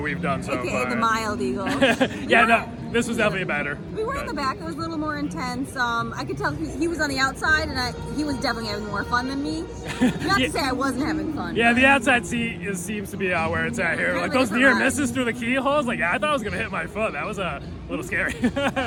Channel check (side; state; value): both; identical; correlation 1.00